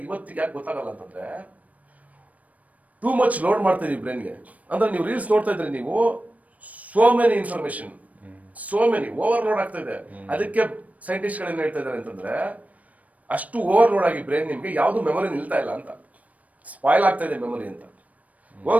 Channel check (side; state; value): left; late; 0.070 ms